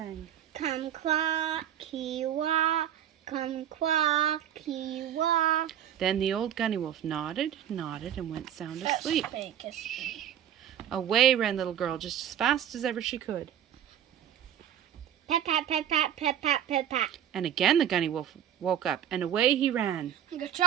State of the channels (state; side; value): quieter; left; 10.1 dB